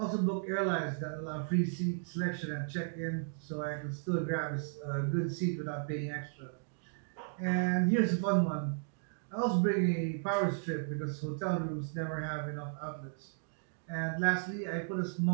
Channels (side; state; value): left; silent; digital silence